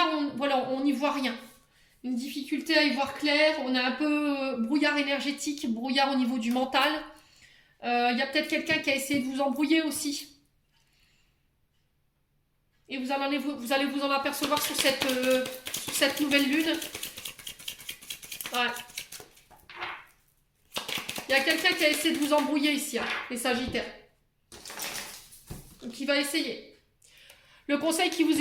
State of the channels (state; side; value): identical; both; correlation 1.00